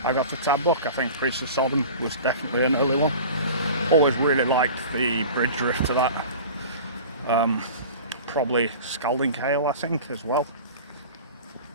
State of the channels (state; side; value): inverted; both; correlation -0.38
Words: I got the tab book. I think Priest of Sodom was definitely an early one. Always really liked the bridge riff to that. Probably Scalding Hail, I think, as well.